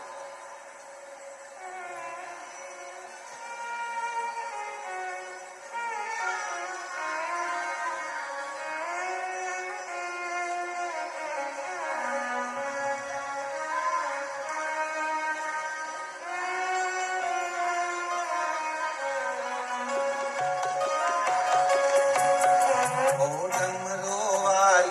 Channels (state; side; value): identical; both; correlation 1.00